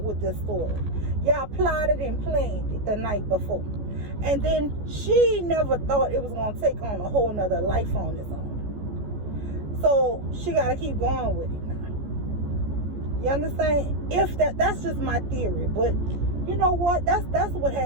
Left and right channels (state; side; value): late; left; 14 ms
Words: with this story. Y'all plotted and planned it the night before. And then she never thought it was gonna take on a whole nother life on its own. So she gotta keep going with it now. You understand? If that's just my theory, but you know what? That's what